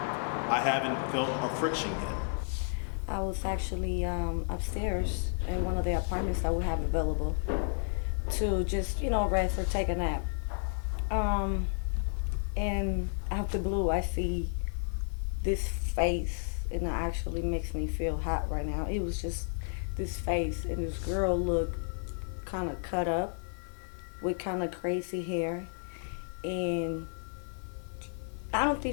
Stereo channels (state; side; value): silent; right; digital silence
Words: I haven't felt a friction yet. I was actually upstairs in one of the apartments that we have available to just, rest or take a nap. And out the blue, I see this face, and it actually makes me feel hot right now. It was just this face, and this girl looked kind of cut up with kind of crazy hair, and I don't